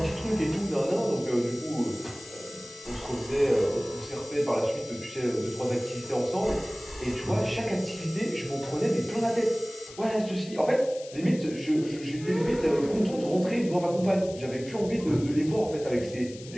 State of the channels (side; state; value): left; noise; hiss, 17 dB below the sound